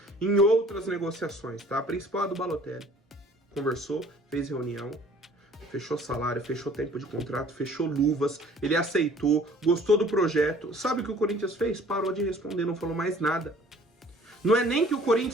em outras negociações, tá? A principal é a do Balotelli. Conversou, fez reunião, fechou salário, fechou tempo de contrato, fechou luvas, ele aceitou, gostou do projeto. Sabe o que o Corinthians fez? Parou de responder, não falou mais nada. Não é nem que o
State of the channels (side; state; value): both; normal; correlation 0.53